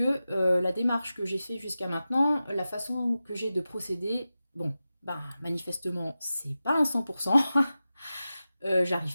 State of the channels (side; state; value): both; inverted; correlation -0.94